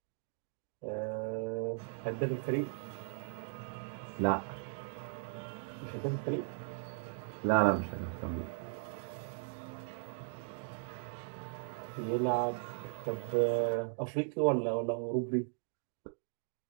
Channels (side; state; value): left; silent; digital silence